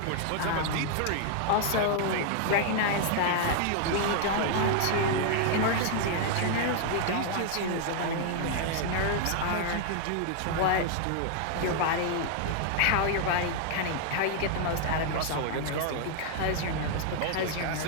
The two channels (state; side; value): different; both; correlation 0.00